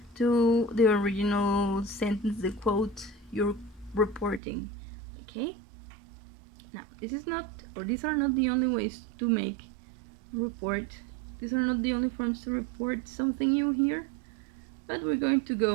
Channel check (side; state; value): left; drops out; at 4.4 s